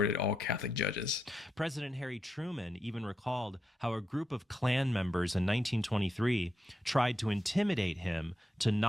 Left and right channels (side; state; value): both; normal; correlation 0.85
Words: all Catholic judges. President Harry Truman even recalled how a group of Klan members in 1923 tried to intimidate him to